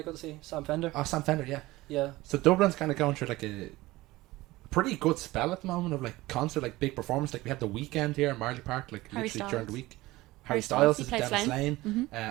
go to see? Sam Fender. Oh, Sam Fender, yeah. Yeah. So Dublin's kind of going through like a pretty good spell at the moment of like concert, like big performance. Like we had the weekend here in Marley Park, like Harry literally Styles. during the week. Harry Styles he is plays down in Slane. Slane.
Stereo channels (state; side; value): quieter; left; 18.9 dB